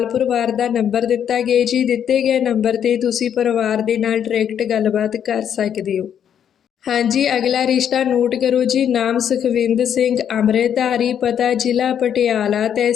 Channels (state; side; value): quieter; right; 8.9 dB